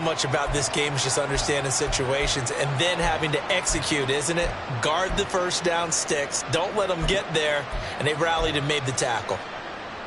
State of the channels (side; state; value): both; identical; correlation 1.00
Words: about this game is just understanding situations and then having to execute, isn't it? Guard the first down sticks. Don't let them get there. And they rallied and made the tackle.